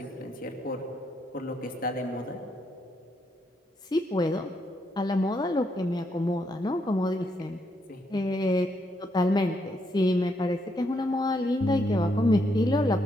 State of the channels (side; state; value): both; normal; correlation 0.77